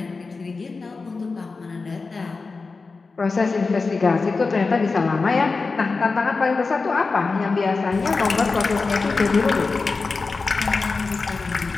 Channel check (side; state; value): right; quieter; 4.1 dB